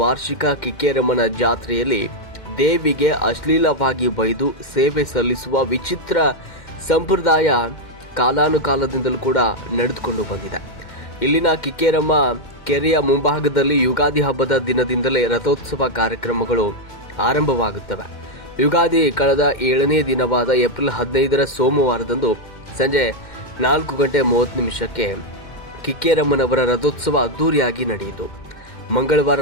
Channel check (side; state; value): right; late; 2.1 ms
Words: ವಾರ್ಷಿಕ ಕಿಕ್ಕೇರಮ್ಮನ ಜಾತ್ರೆಯಲ್ಲಿ ದೇವಿಗೆ ಅಶ್ಲೀಲವಾಗಿ ಬೈದು ಸೇವೆ ಸಲ್ಲಿಸುವ ವಿಚಿತ್ರ ಸಂಪ್ರದಾಯ ಕಾಲಾನುಕಾಲದಿಂದಲೂ ಕೂಡ ನಡೆದುಕೊಂಡು ಬಂದಿದೆ. ಇಲ್ಲಿನ ಕಿಕ್ಕೇರಮ್ಮ ಕೆರೆಯ ಮುಂಭಾಗದಲ್ಲಿ ಯುಗಾದಿ ಹಬ್ಬದ ದಿನದಿಂದಲೇ ರಥೋತ್ಸವ ಕಾರ್ಯಕ್ರಮಗಳು ಆರಂಭವಾಗುತ್ತವೆ. ಯುಗಾದಿ ಕಳೆದ 7ನೇ ದಿನವಾದ ಏಪ್ರಿಲ್ 15ರ ಸೋಮವಾರದಂದು ಸಂಜೆ 4:30 ಕಿಕ್ಕೇರಮ್ಮನವರ ರಥೋತ್ಸವ ಅದ್ದೂರಿಯಾಗಿ ನಡೆಯಿತು. ಮಂಗಳವಾರ